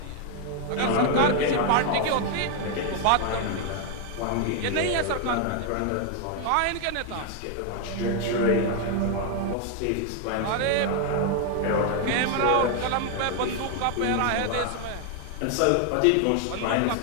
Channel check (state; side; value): different; both; correlation 0.01